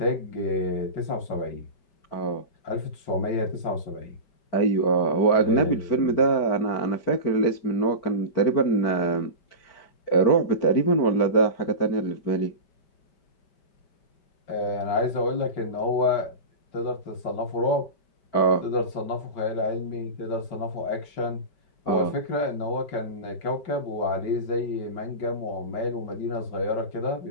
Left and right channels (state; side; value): late; right; 5.1 ms